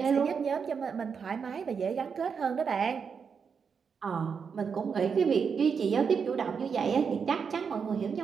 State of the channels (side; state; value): left; quieter; 6.2 dB